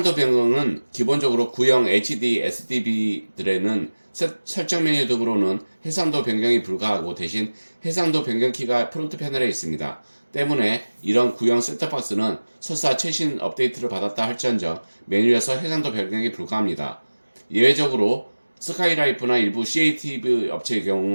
변경은 기본적으로 구형 HD SDV들에는 설정 메뉴 등으로는 해상도 변경이 불가하고 대신 해상도 변경 키가 프론트 패널에 있습니다. 때문에 이런 구형 셋톱박스는 설사 최신 업데이트를 받았다 할지언정 메뉴에서 해상도 변경이 불가합니다. 예외적으로 스카이라이프나 일부 CATV 업체의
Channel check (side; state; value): both; inverted; correlation -1.00